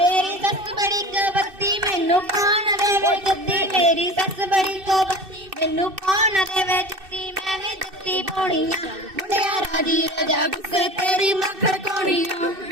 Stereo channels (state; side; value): late; left; 2.6 ms